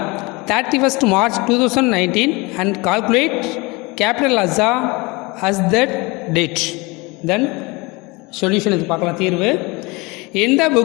31st March 2019 and calculate capital as that date. Then solution இது பார்க்கலாம் தீர்வு. In the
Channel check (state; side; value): quieter; right; 25.5 dB